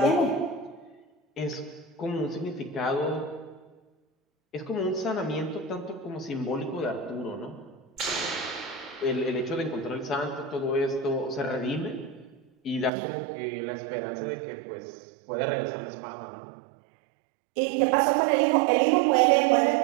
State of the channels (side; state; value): left; drops out; at 12.9 s